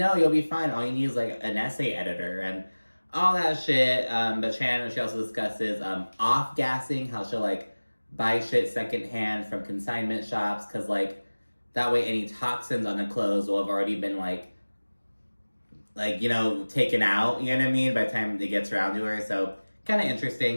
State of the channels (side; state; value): both; inverted; correlation -1.00